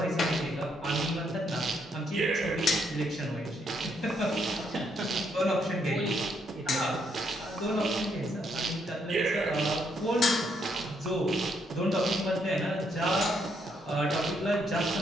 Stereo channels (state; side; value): normal; both; correlation 0.74